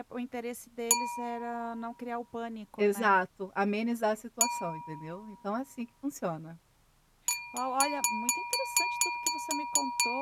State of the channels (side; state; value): both; identical; correlation 1.00